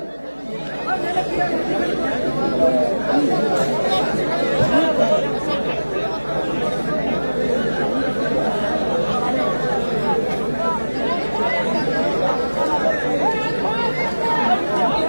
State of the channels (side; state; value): both; inverted; correlation -1.00